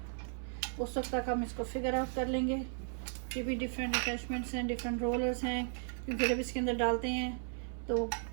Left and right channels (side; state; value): left; silent; 54 dB below the other